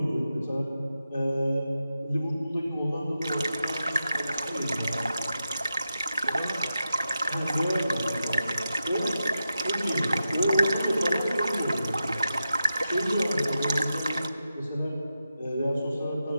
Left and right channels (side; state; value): both; inverted; correlation -0.89